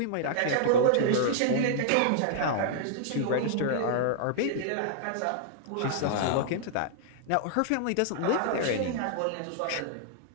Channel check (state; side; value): different; both; correlation -0.01